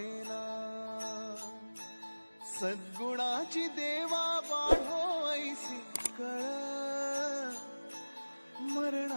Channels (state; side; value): inverted; both; correlation -1.00